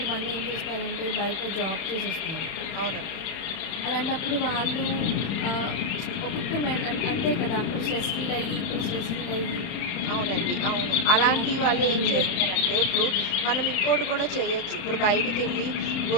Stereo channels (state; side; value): late; right; 31 ms